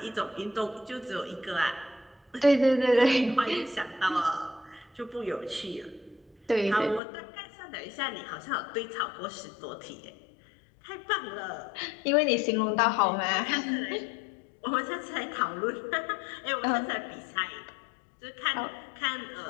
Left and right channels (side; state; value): right; drops out; at 7.0 s